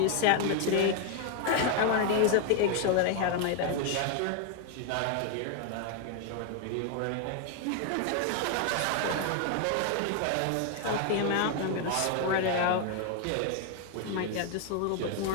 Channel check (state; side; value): different; both; correlation 0.01